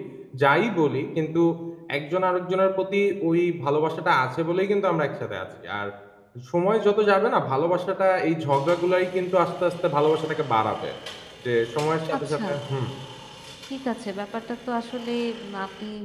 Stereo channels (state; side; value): identical; both; correlation 1.00